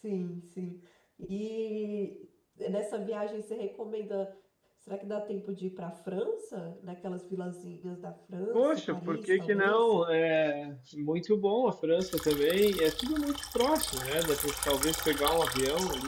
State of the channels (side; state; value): both; identical; correlation 1.00